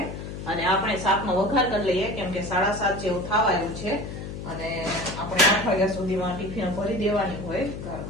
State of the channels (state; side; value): noise; left; hum, 8 dB below the sound